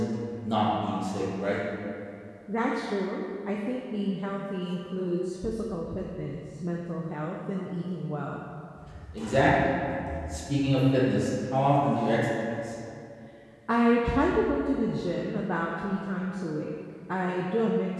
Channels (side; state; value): both; identical; correlation 1.00